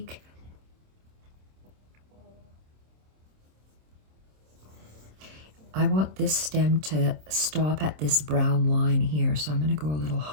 I want this stem to stop at this brown line here, so I'm going to go a little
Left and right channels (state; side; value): late; left; 26 ms